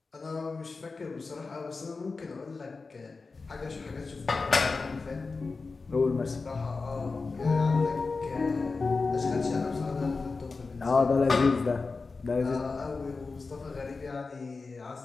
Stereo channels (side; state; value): right; quieter; 4.1 dB